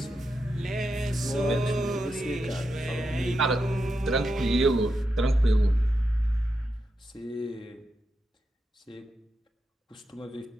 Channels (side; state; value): both; normal; correlation 0.86